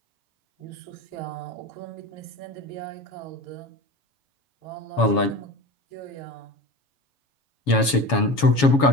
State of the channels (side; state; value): right; late; 7.2 ms